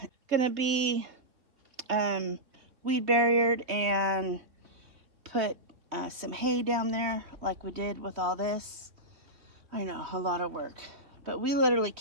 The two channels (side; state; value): left; late; 3.4 ms